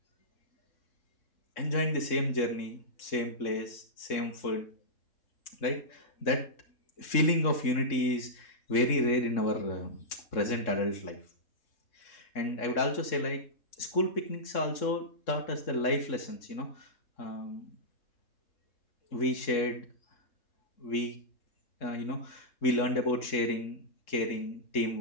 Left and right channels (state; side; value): late; right; 3.6 ms